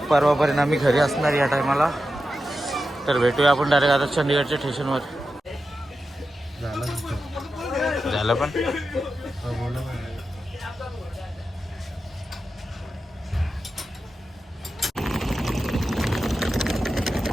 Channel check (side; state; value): both; normal; correlation 0.91